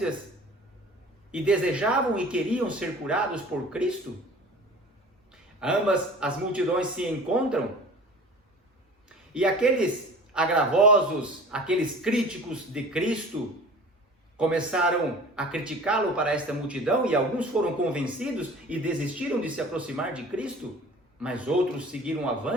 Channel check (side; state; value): both; normal; correlation 0.43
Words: e desejavam e queriam ser curados por Cristo. Ambas as multidões se encontram, e aqueles agravosos, aqueles críticos de Cristo, começaram a criticá-lo para esta multidão, e alguns foram convencidos e desistiram de se aproximar de Cristo, mas outros seguiram